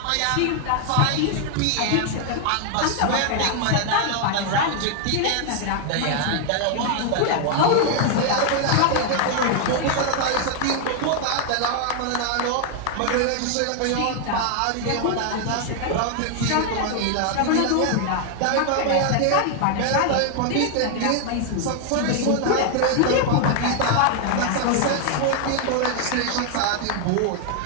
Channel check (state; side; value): different; both; correlation 0.00